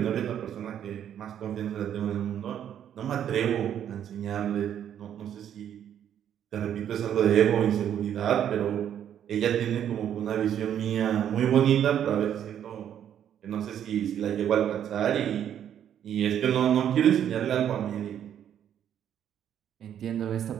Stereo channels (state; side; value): quieter; left; 9.7 dB